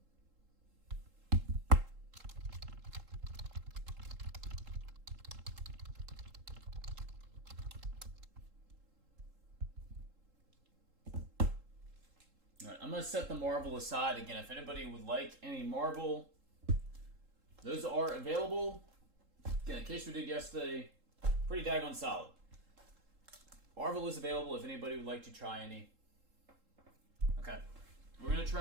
Alright, I'm going to set the marble aside again. If anybody would like any marble, those are available. Again, in case we did yesterday, pretty daggone solid. Marvel is available if anybody would like to try any. Okay. We're going to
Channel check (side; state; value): left; late; 3.7 ms